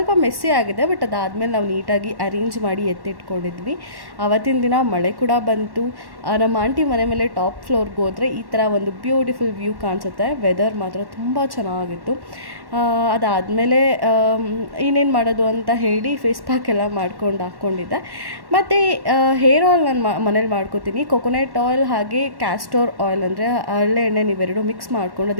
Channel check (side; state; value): left; late; 1.1 ms